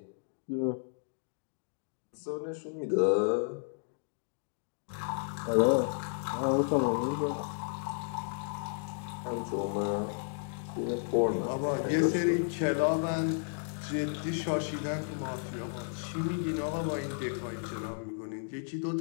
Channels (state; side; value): silent; right; digital silence